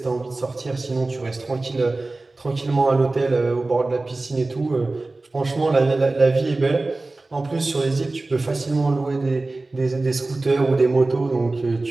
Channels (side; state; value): left; quieter; 3.2 dB